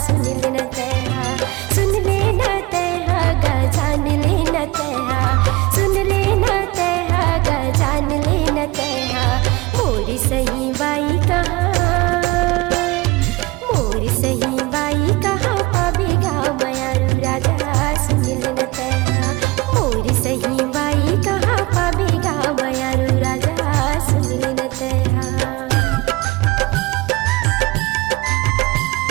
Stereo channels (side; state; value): left; quieter; 22.3 dB